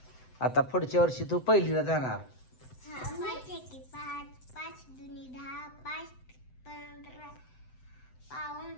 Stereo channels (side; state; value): right; late; 7.9 ms